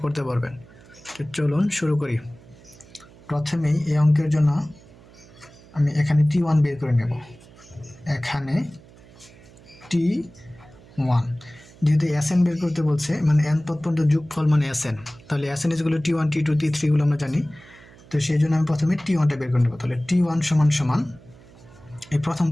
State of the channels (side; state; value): right; noise; hum, 23 dB below the sound